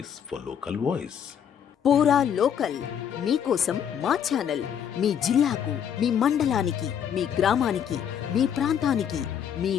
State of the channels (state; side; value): quieter; right; 8.6 dB